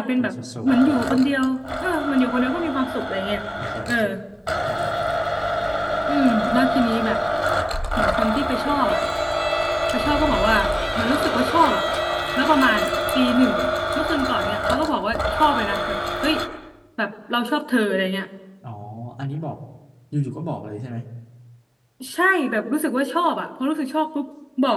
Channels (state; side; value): identical; both; correlation 1.00